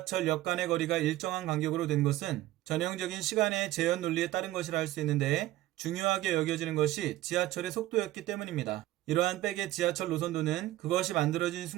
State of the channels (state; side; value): quieter; left; 16.0 dB